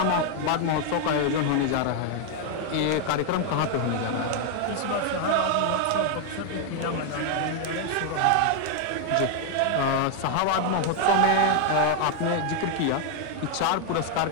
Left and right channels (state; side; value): different; both; correlation 0.00